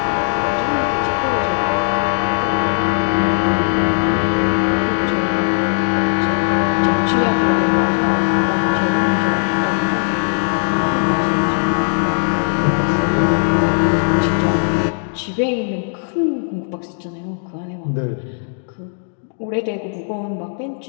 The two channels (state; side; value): silent; right; digital silence